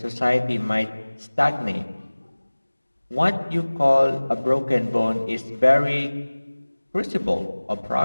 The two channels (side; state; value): both; inverted; correlation -1.00